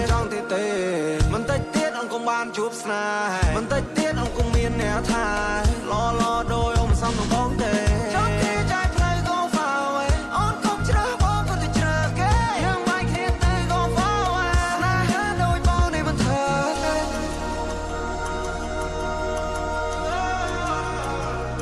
នចង់ទៀតទេមិនតិចទៀតអូនកុំបានជួបស្នេហ៍មិនតិចទៀតអូនកុំមានអ្នកថាឡដោយអូនមិនសមនឹងបងទេចង់គេចែកផ្លូវ go far away អូនកុំជ្រើសបងក៏ទៅជ្រើសគេយើងមិនគ្នាទេ go far away ស្នេហ៍ដូចបងនេះមិនធ្វើទេ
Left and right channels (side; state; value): both; identical; correlation 1.00